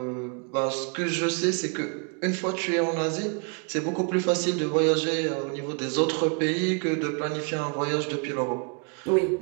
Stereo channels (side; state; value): left; quieter; 37.7 dB